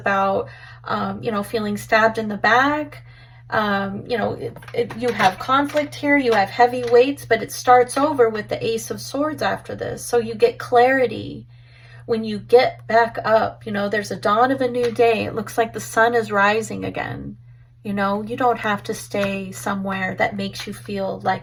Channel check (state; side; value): identical; both; correlation 1.00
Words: feeling stabbed in the back. You have conflict here. You have heavy weights, but it starts over with the Ace of Swords after this. So you get clarity. When you get back up, there's a dawn of a new day. It looks like the sun is rising again. You don't have to stay somewhere that makes you feel